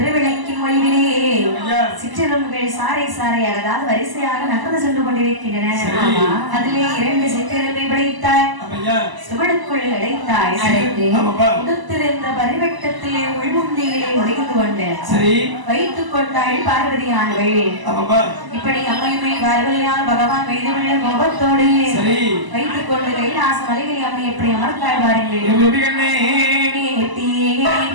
ஒளிவிலே சிற்றெரும்புகள் சாறை சாறையாக அதாவது வரிசையாக நகர்ந்து சென்று கொண்டிருக்கின்றன. அதிலே 2 சிற்றெரும்பை படைத்தாய் சுவடுக்குள் அடைத்தாய் உடுத்திருந்த பரிவட்டத்திலே உள்முந்தியிலே ஒளிந்து கொண்டு வைத்துக் கொண்டாள் பார்வதியானவள். இப்படி அம்மையுமே பார்வதியால் பகவான் மீதுள்ள முகத்தோடு வைத்துக் கொண்டு கைலாச மலைகளை அம்மை எப்படி அமர்த்தாள் பாருங்கள்.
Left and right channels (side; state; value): left; late; 1.0 ms